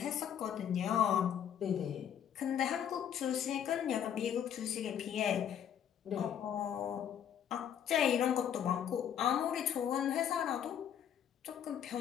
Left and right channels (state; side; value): quieter; right; 9.2 dB